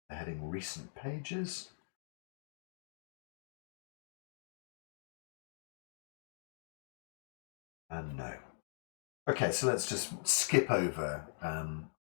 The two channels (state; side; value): silent; right; digital silence